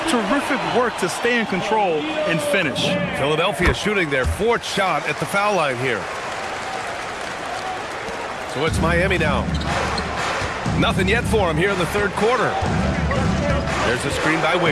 terrific work to stay in control and finish. Philadelphia shooting their 4th shot at the foul line here. So it's Miami now. Nothing yet for him here in the 3rd quarter. There's a screen by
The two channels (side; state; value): both; identical; correlation 1.00